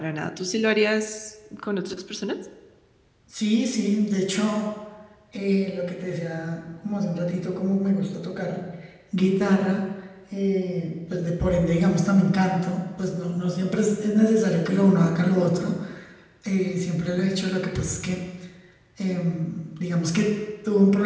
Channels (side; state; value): both; identical; correlation 1.00